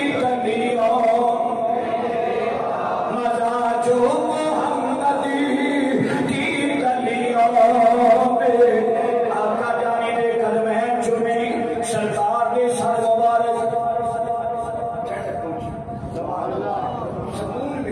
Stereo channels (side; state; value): both; identical; correlation 1.00